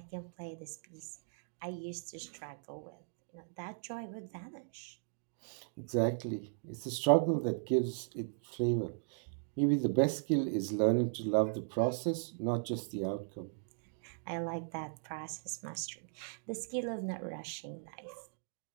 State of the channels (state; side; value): silent; left; digital silence